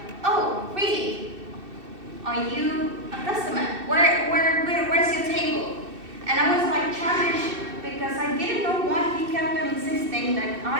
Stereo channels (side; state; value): left; late; 2.6 ms